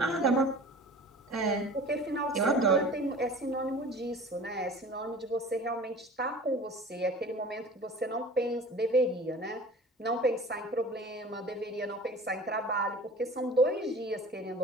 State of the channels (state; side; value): normal; both; correlation 0.42